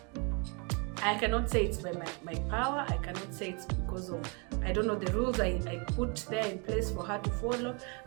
I cannot say it's by my power. I cannot say it's because of, I don't know, the rules I put there in place for her to follow.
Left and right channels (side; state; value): left; quieter; 33.4 dB